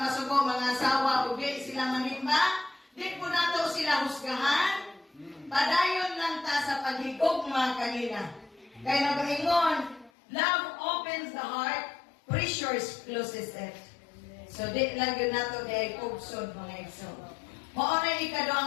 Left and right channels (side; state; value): right; drops out; at 10.1 s